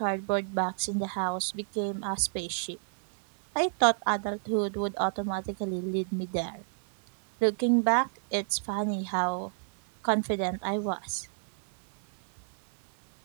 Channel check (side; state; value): left; silent; 58 dB below the other